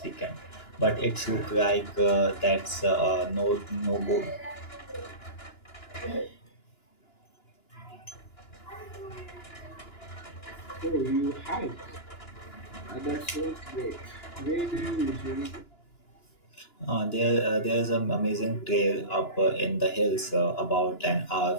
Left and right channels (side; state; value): right; late; 2.9 ms